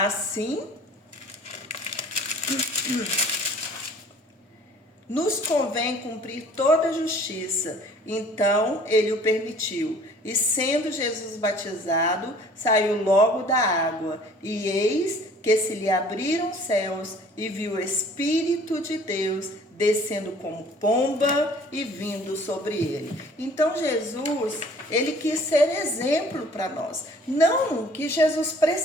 nos convém cumprir toda a justiça. Então ele o permitiu. E sendo Jesus batizado, saiu logo da água. E eis que se lhe abriram os céus, e viu o Espírito de Deus descendo como pomba e vindo sobre ele. Então Jesus, ele quis ser exemplo para nós. Não que Jesus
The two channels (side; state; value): both; normal; correlation 0.52